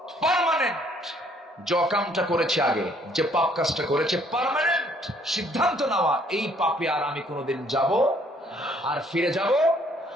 পার্মানেন্ট, যে কামটা করেছে আগে, যে পাপ কাজটা করেছে, পার্মানেন্ট সিদ্ধান্ত নেওয়া, এই পাপে আর আমি কোনোদিন যাব আর ফিরে যাব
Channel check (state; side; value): normal; both; correlation 0.63